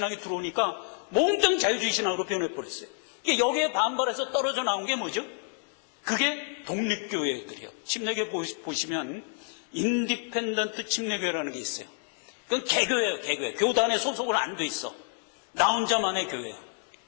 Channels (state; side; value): silent; right; 59 dB below the other